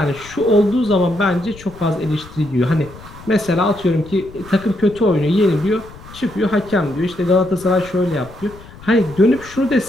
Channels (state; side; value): noise; left; rumble, 19 dB below the sound